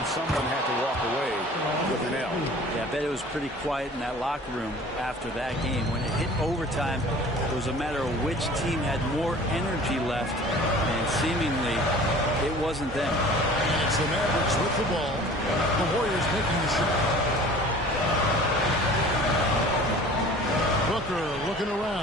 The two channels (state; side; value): normal; both; correlation 0.45